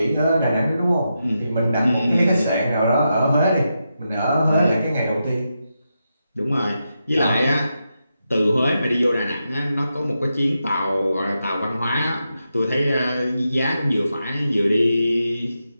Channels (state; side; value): inverted; both; correlation -0.87